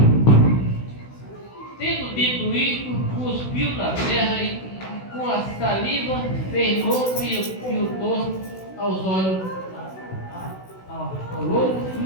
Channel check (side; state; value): right; late; 16 ms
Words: Tendo dito isto, cuspiu na terra e com a saliva fez louco e o torno aos olhos ao louco e